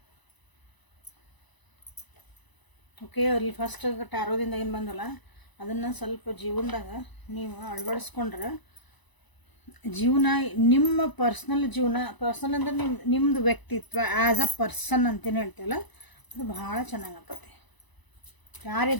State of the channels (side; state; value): right; late; 1.0 ms